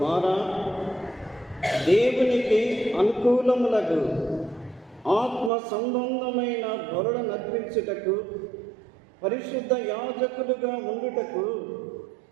దేవునికి అనుకూలములకు ఆత్మ సంబంధమైన బలుల నర్పించుటకు, పరిశుద్ధ యాజకులుగా ఉండుటకు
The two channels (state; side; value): drops out; left; at 5.5 s